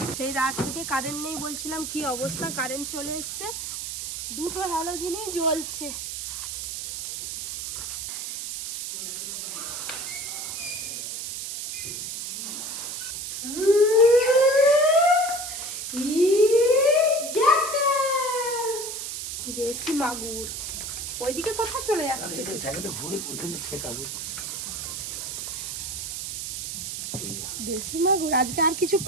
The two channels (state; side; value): noise; right; hiss, 5 dB below the sound